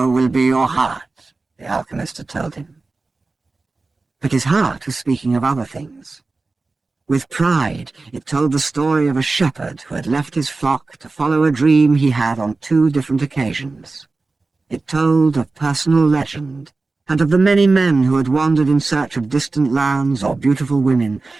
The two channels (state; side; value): quieter; left; 3.7 dB